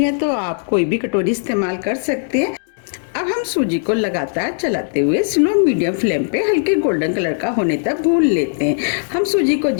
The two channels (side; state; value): right; silent; digital silence